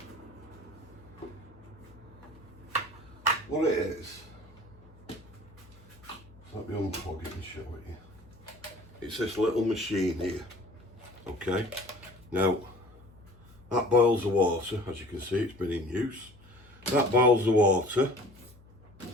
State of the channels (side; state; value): left; noise; hum, 24 dB below the sound